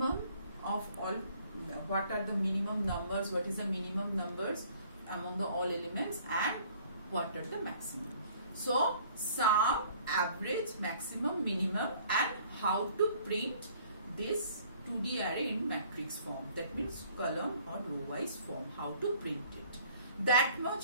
of all, what are the minimum numbers, what is the minimum numbers among the all elements, and what are the maximum. So sum, average, maximum, minimum, and how to print this 2D array in matrix form, that means column or row wise form, how to print it. That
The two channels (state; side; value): inverted; both; correlation -0.56